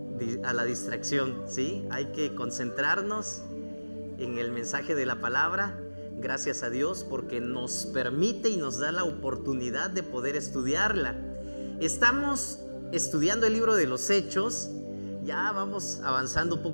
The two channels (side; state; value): both; inverted; correlation -1.00